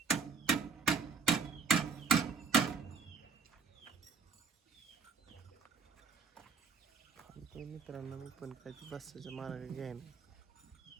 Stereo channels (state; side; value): quieter; left; 5.2 dB